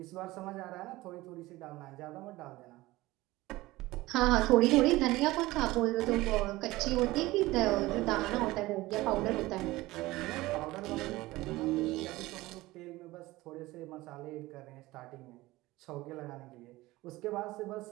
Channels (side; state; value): left; quieter; 19.0 dB